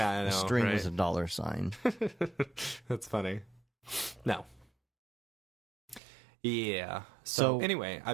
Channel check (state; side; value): drops out; left; at 6.0 s